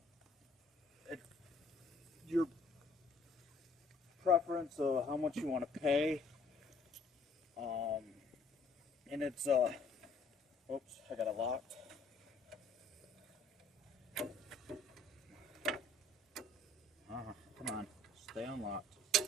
your preference of how much you want to pay, and it's oops, I got it locked. Come on, stay unlocked.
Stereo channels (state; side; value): normal; both; correlation 0.60